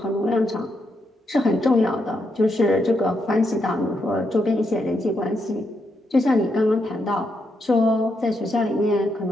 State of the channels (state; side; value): normal; both; correlation 0.81